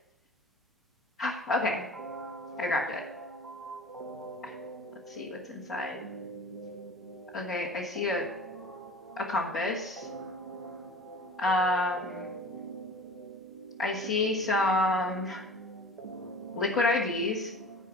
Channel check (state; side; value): normal; both; correlation 0.39